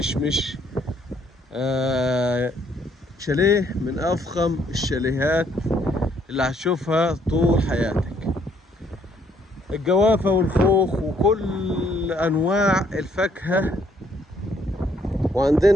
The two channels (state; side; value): normal; both; correlation 0.67